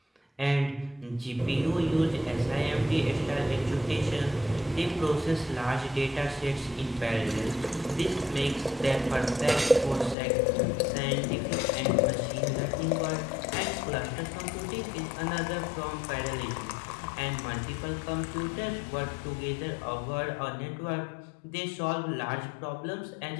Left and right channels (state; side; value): drops out; right; at 10.2 s